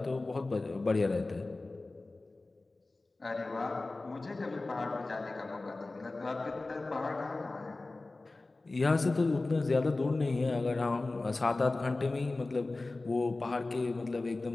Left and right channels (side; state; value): right; quieter; 3.2 dB